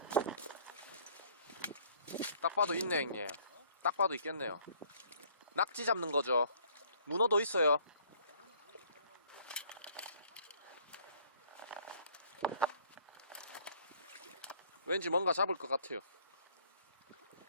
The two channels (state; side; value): inverted; both; correlation -0.58